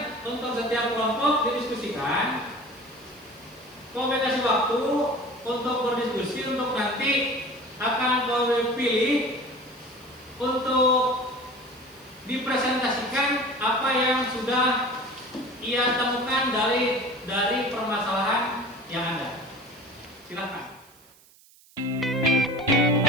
untuk setiap kelompok didiskusikan. Kau kasih waktu untuk berdiskusi, untuk nanti akan kau pilih untuk dipresentasikan apa yang sudah ia temukan dari permasalahan yang ada. Silakan.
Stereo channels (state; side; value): noise; right; hiss, 27 dB below the sound